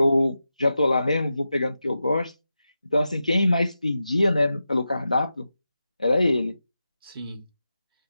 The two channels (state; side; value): inverted; both; correlation -0.91